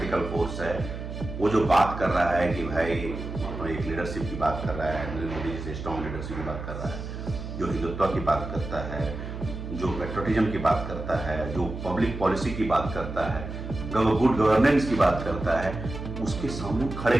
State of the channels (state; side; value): noise; right; hum, 8 dB below the sound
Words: फोर्स है, वो जो बात कर रहा है कि भाई एक लीडरशिप की बात कर रहा है, नरेंद्र मोदी जैसे स्ट्रॉन्ग लीडरशिप की बात कर रहा है, जो हिंदुत्व की बात करता है, जो पेट्रियटिज्म की बात करता है, जो पब्लिक पॉलिसी की बात करता है, गुड गवर्नेंस की बात करता है, उसके सामने खड़े